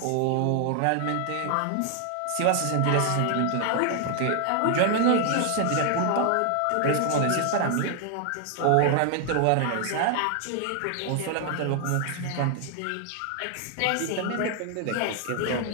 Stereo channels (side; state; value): both; different; correlation 0.00